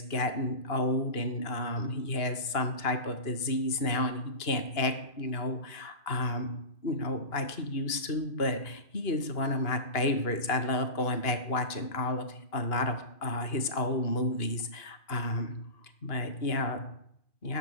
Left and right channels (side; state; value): right; late; 2.8 ms